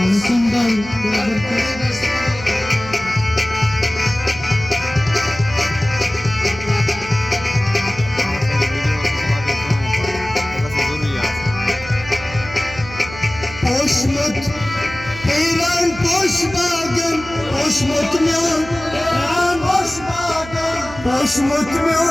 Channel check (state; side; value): noise; right; hum, 15 dB below the sound